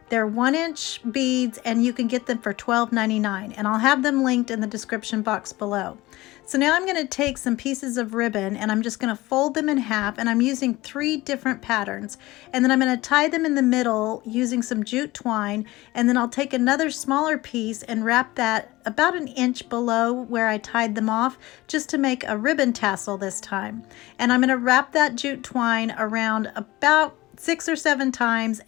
they're 1-inch beads, and you can get them for $12.99, and I'll have them linked in the description box below. So now I'm going to take some pieces of ribbon, and I'm just going to fold them in half, and I'm using 3 different patterns, and then I'm going to tie them in the middle using some jute twine, and then I'll take another smaller piece and wrap that about 1 inch below where I tied them off, just to make a ribbon tassel this time. And I'm going to wrap that jute twine around about 6 or 7 times,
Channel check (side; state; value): right; quieter; 19.2 dB